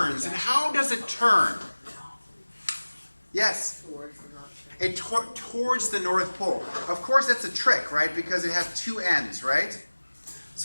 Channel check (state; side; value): inverted; both; correlation -1.00